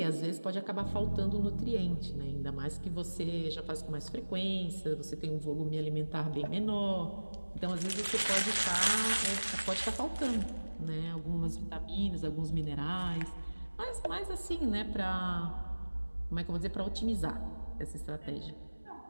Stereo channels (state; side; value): inverted; both; correlation -1.00